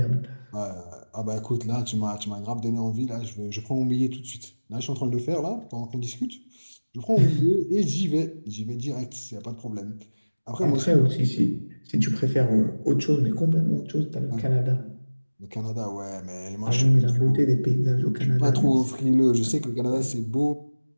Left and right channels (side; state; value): both; inverted; correlation -1.00